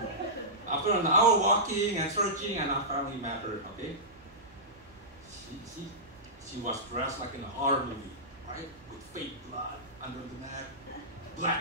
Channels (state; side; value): noise; right; hum, 27 dB below the sound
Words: After an hour walking and searching, and I finally met her, okay? She was dressed like in a horror movie, right? With fake blood under the neck,